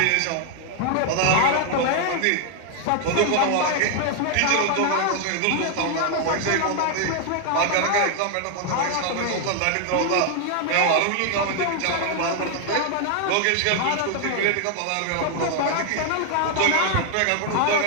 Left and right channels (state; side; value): different; both; correlation 0.00